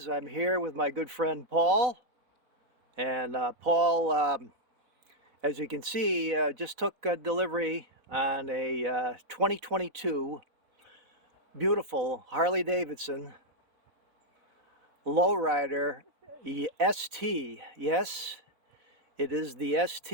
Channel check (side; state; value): left; late; 4.0 ms